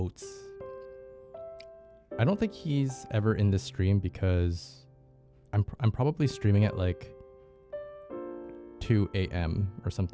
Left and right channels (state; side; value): identical; both; correlation 1.00